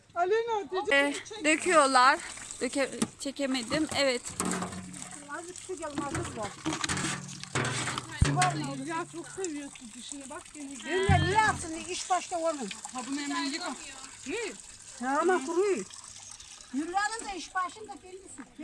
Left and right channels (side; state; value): both; identical; correlation 1.00